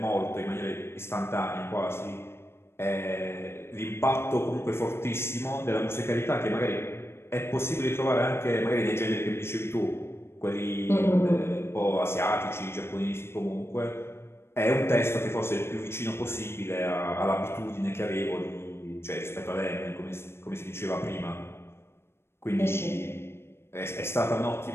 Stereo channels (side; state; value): right; late; 0.12 ms